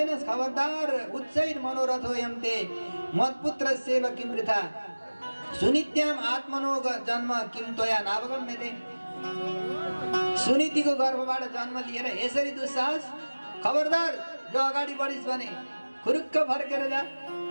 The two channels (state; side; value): inverted; both; correlation -1.00